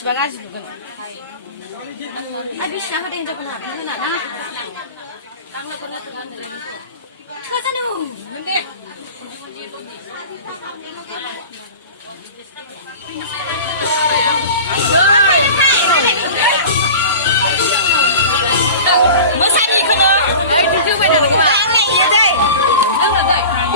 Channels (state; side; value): inverted; both; correlation -0.36